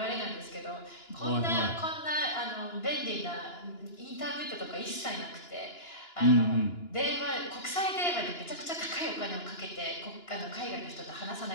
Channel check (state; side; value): late; right; 2.9 ms